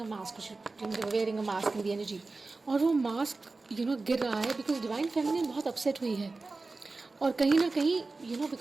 a mask, wearing a mask in the energy, और वो मास्क गिर रहा है बिकॉज डिवाइन फेमिनिन बहुत अपसेट हुई है. और कहीं ना कहीं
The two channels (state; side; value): quieter; left; 3.6 dB